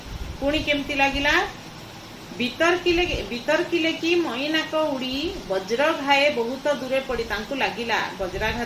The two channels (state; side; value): identical; both; correlation 1.00